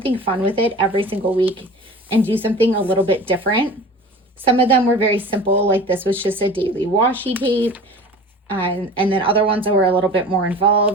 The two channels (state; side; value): normal; both; correlation 0.39